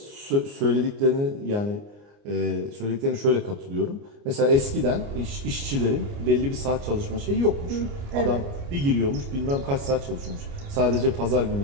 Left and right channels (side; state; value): left; late; 29 ms